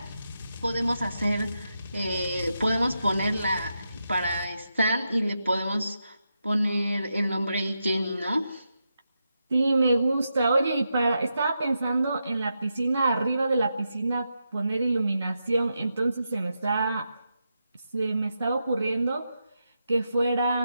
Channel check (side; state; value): both; inverted; correlation -0.86